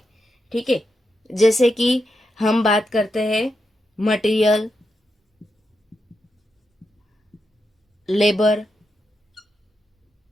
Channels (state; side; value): normal; both; correlation 0.85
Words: ठीक है। जैसे कि हम बात करते हैं मटेरियल, लेबर।